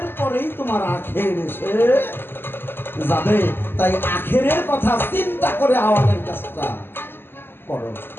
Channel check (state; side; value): late; right; 0.10 ms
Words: পরেই তোমার আখের এসে যাবে। তাই আখেরের কথা চিন্তা করে আওয়ালের কাজটা করো।